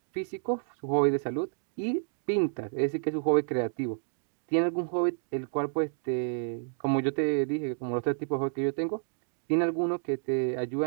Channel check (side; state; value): left; silent; digital silence